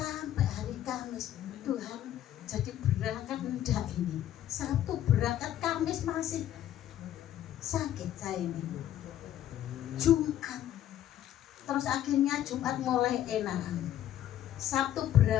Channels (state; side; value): quieter; right; 11.9 dB